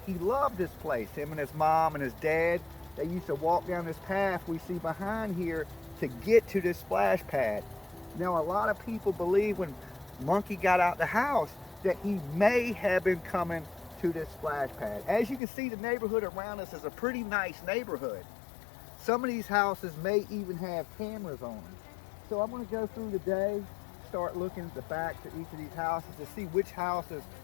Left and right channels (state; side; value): drops out; right; at 15.4 s